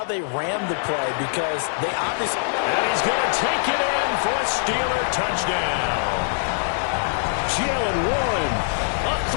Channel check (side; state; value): right; silent; digital silence